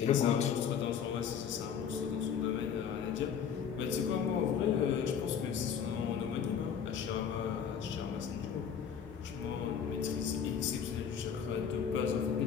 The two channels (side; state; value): right; quieter; 7.6 dB